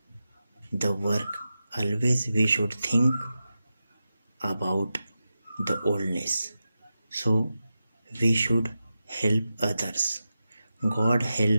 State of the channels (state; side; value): inverted; both; correlation -0.91